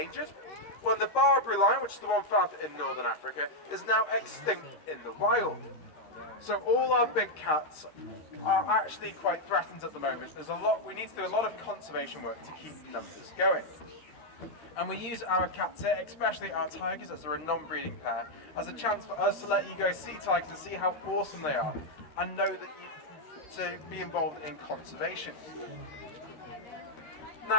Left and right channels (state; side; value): late; right; 13 ms